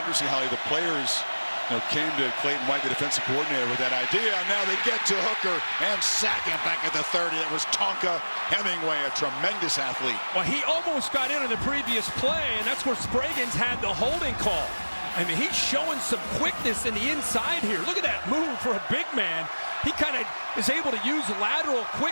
Holly. The players came to Clayton White, the defensive coordinator, with that idea. Now they get to Hooker and sack him back at the 30. It was Tonka Hemingway, a tremendous athlete. Well, he almost got in on the previous play, and that's where Spraggins had the holding call. I mean, he's showing some quickness in the inside here. Look at that move for a big man. He kind of is able to use lateral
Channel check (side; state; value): both; inverted; correlation -1.00